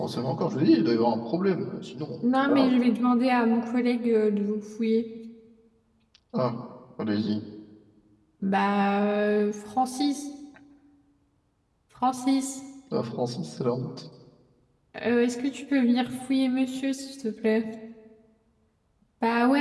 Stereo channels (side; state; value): both; identical; correlation 1.00